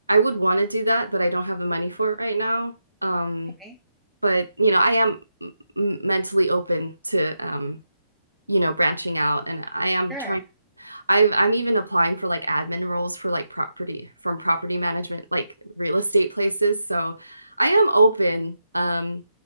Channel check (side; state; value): both; inverted; correlation -0.87